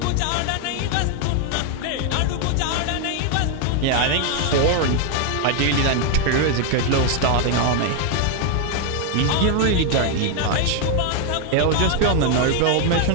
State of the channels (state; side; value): different; both; correlation 0.00